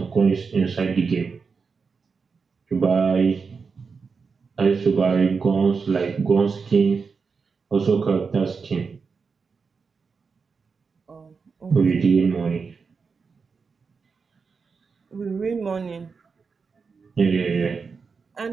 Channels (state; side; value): quieter; left; 5.2 dB